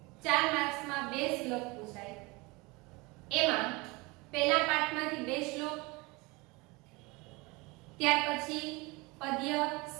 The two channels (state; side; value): quieter; left; 25.1 dB